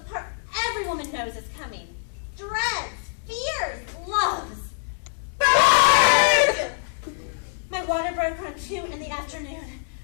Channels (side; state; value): right; silent; digital silence